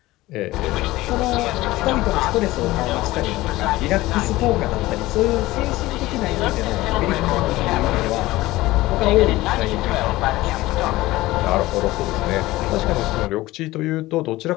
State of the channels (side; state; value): right; quieter; 18.2 dB